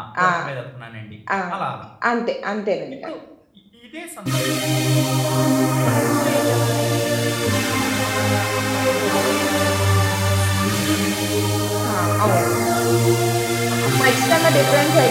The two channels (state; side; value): identical; both; correlation 1.00